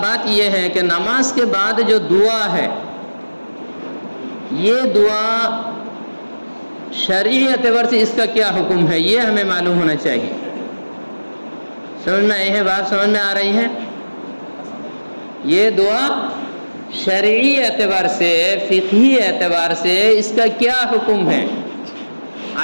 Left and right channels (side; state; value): both; inverted; correlation -1.00